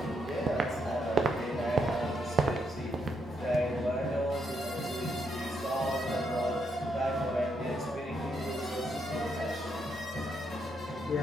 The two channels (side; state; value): both; normal; correlation 0.78